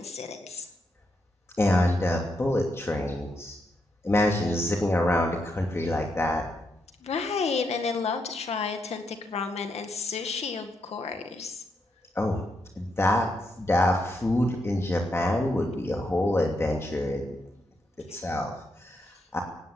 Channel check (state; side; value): normal; both; correlation 0.81